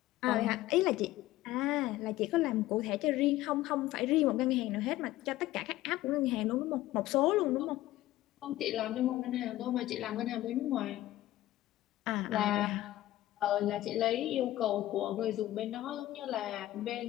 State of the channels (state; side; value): quieter; right; 15.5 dB